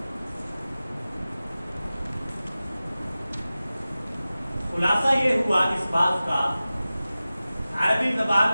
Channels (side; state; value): both; inverted; correlation -0.96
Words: خلاصہ یہ ہوا اس بات کا عربی